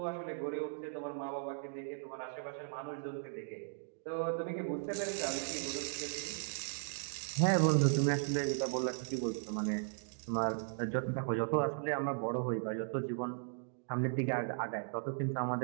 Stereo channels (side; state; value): left; silent; digital silence